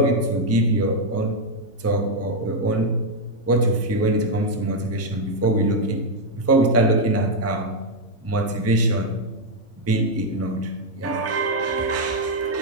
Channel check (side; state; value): both; normal; correlation -0.01